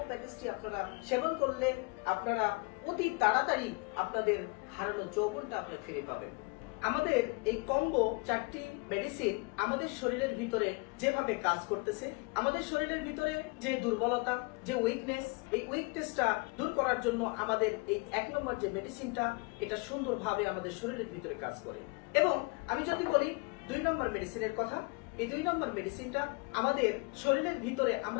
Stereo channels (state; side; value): quieter; right; 29.9 dB